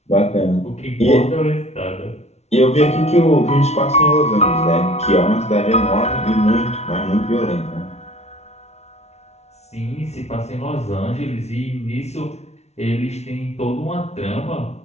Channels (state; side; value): late; right; 0.31 ms